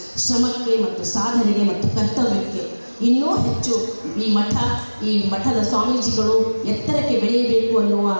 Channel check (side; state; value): both; inverted; correlation -1.00